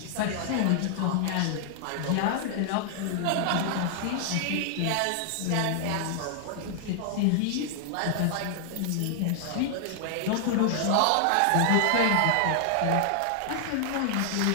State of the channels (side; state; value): both; different; correlation 0.00